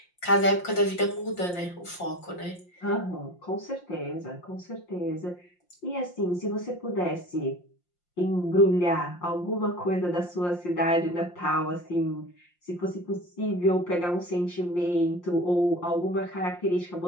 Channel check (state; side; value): late; right; 5.7 ms